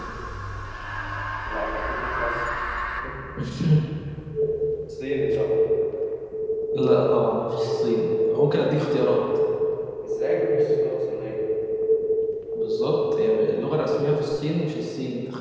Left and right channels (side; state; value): both; identical; correlation 1.00